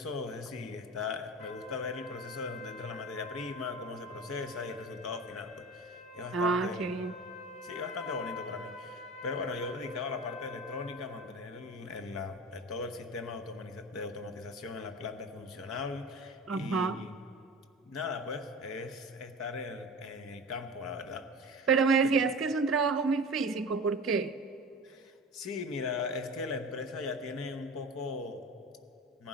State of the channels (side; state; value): both; normal; correlation 0.33